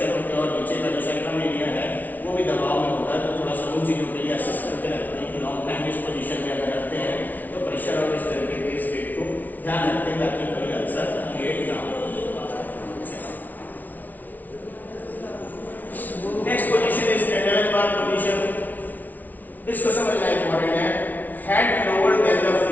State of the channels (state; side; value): late; right; 0.079 ms